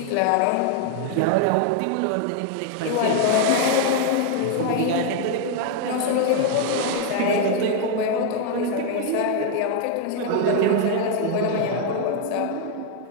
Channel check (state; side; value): different; both; correlation 0.00